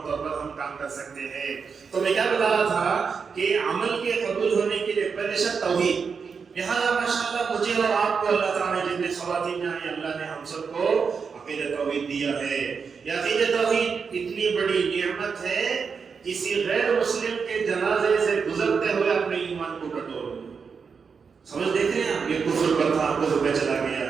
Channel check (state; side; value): quieter; left; 5.7 dB